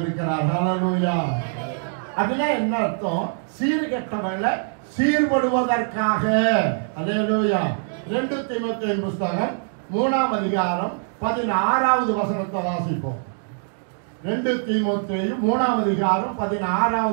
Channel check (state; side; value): silent; left; digital silence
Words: ஹல்லேலூயா. அப்படின்னா என்ன அர்த்தம்? சீர்கெட்டவர்களை சீர்படுவதற்காக. ஹல்லேலூயா. 2 தீமோத்தேயு புத்தகம் 3ஆம் அதிகாரம் 16வது வசனத்தை வாசிப்போம். 2 தீமோத்தேயு 3ஆம் அதிகாரம்